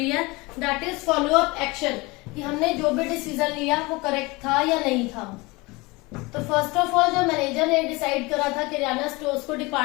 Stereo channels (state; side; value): quieter; right; 24.0 dB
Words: है। That is follow up action, कि हमने जो भी डिसीजन लिया वो करेक्ट था या नहीं था। तो फर्स्ट ऑफ ऑल जो मैनेजर ने डिसाइड करा था किराना स्टोर्स को